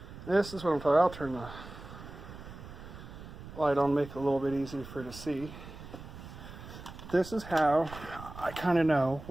this is what I'm talking. I'll turn the light on, make it a little bit easier for you to see. This is how I kind of know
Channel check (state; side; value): noise; right; rumble, 14 dB below the sound